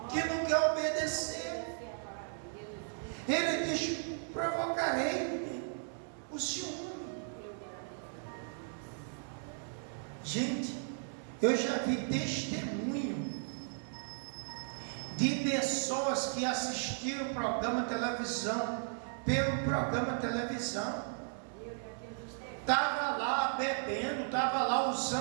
Que não quer obedecer. Ele diz: provocarei o ciúme. Gente, eu já vi testemunho de pessoas que assistiram o programa de televisão, pelo programa de televisão, estava lá bebendo, estava lá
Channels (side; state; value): left; silent; digital silence